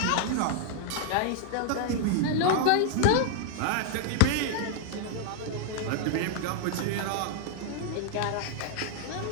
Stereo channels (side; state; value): both; different; correlation -0.01